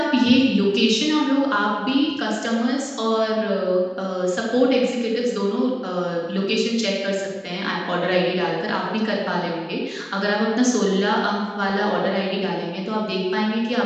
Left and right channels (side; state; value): both; identical; correlation 1.00